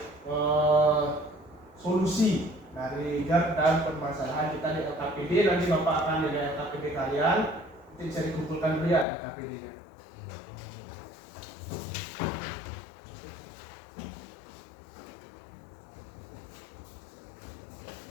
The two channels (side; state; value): right; drops out; at 9.1 s